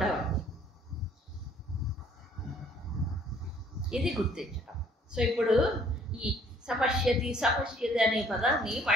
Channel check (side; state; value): both; normal; correlation 0.59